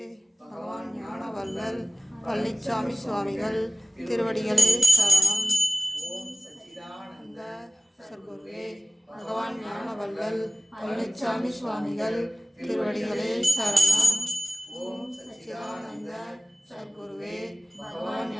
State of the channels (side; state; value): both; normal; correlation 0.96